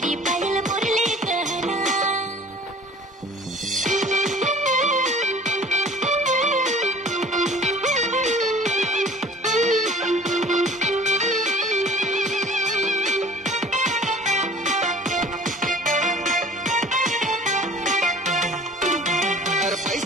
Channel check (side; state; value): both; normal; correlation 0.47